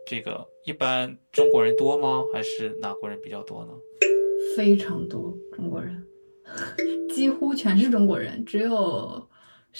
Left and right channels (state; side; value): inverted; both; correlation -1.00